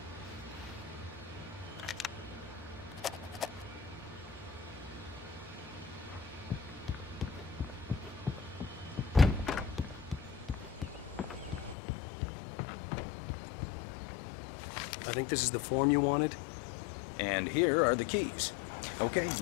I think this is the form you wanted. And here are the keys. Okay,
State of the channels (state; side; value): drops out; right; at 11.8 s